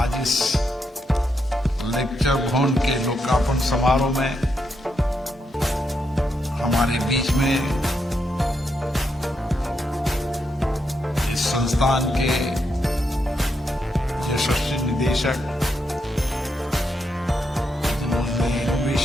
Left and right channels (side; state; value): both; normal; correlation 0.81